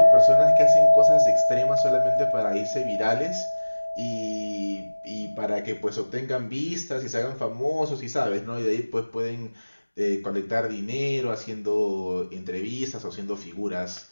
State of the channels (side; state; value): both; inverted; correlation -1.00